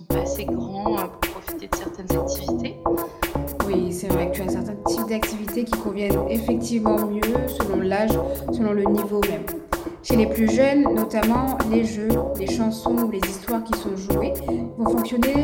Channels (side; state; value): both; identical; correlation 1.00